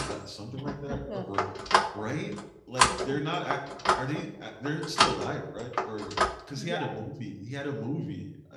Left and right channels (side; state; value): both; identical; correlation 1.00